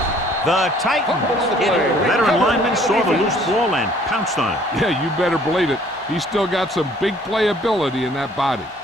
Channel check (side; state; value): both; normal; correlation 0.58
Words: The Titans. Veteran lineman saw the loose ball and pounced on it. Yeah, you better believe it. He's still got some big playability in that body.